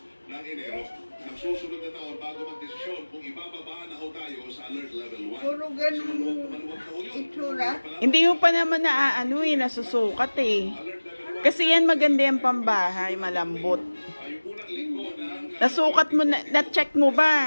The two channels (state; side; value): inverted; both; correlation -1.00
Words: Susunod na taon bago magdesisyon kung ibababa na ho tayo sa alert level 1. Puro ganun itsura. Hindi mo pa naman nasusukat eh. Kasi yan maganda yung pambahay, malambot. Nasukat mo na-check mo